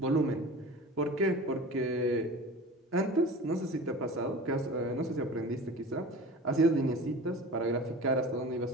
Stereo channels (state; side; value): normal; both; correlation 0.37